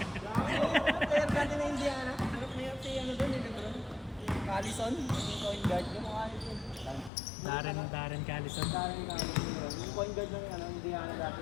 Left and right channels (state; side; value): drops out; right; at 7.1 s